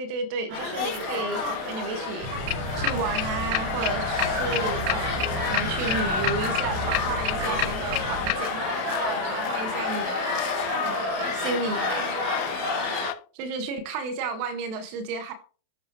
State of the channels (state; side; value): late; left; 32 ms